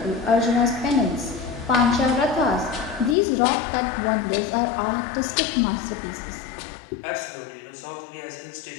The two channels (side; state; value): right; drops out; at 3.2 s